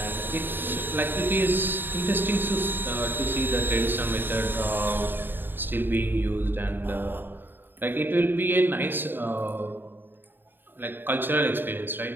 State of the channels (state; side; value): late; left; 0.096 ms